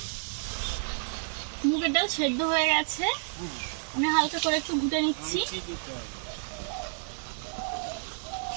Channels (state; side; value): silent; left; digital silence